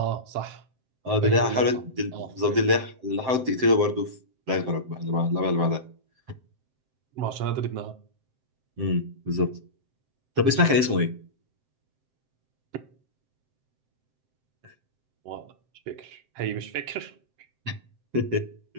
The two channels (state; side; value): late; left; 7.7 ms